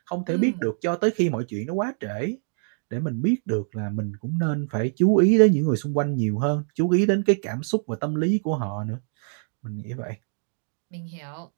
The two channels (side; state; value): left; silent; digital silence